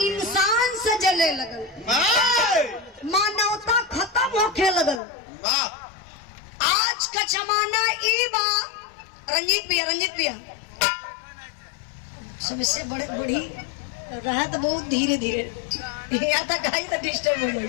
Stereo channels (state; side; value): drops out; right; at 5.0 s